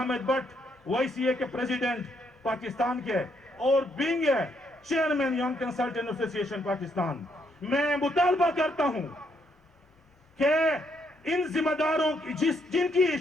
भट्ट वाईसीए के प्रेसिडेंट पाकिस्तान के और being chairman young consultant association Pakistan, मैं मुतालबा करता हूं कि इन जिम्मेदारों की जिनकी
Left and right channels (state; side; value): normal; both; correlation 0.74